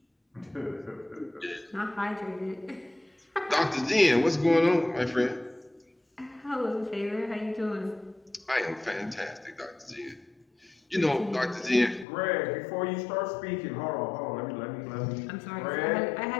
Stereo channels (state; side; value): drops out; right; at 12.1 s